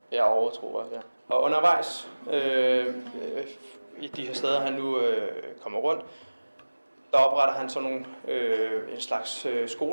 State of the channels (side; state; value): both; inverted; correlation -1.00